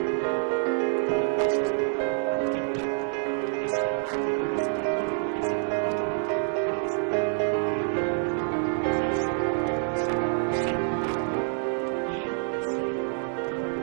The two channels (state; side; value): silent; left; digital silence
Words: un espacio llamado Agustín Tosco. Ese barrio está libre de violencia porque justamente las mujeres y hombres que viven allí se autoorganizaron, hicieron un barrio y se